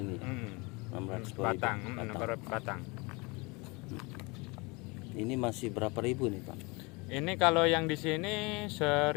ya? 600 batang. Batang. Ini masih berapa ribu nih Pak? Ini kalau yang di sini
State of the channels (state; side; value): quieter; right; 27.1 dB